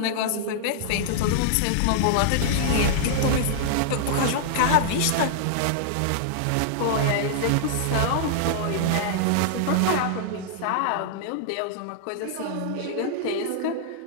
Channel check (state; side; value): different; both; correlation -0.01